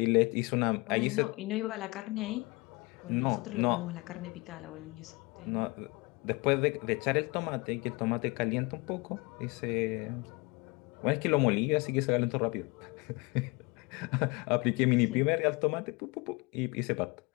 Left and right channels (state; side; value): quieter; right; 26.3 dB